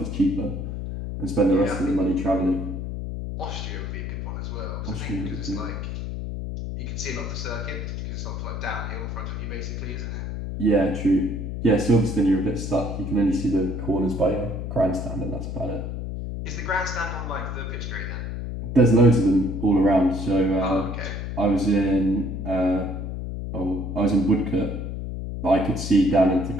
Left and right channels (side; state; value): left; noise; hum, 5 dB below the sound